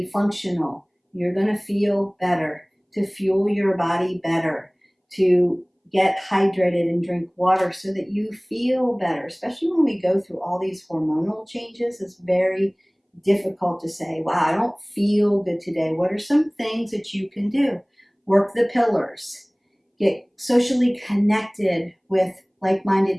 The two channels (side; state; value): both; identical; correlation 1.00